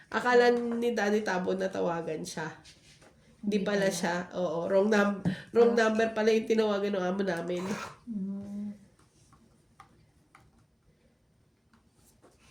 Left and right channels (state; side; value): identical; both; correlation 1.00